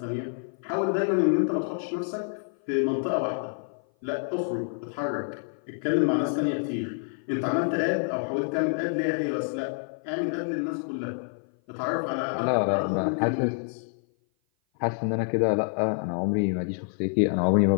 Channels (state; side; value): silent; right; 56 dB below the other